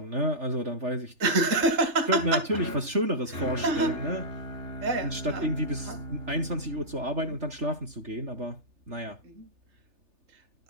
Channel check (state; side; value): late; left; 3.3 ms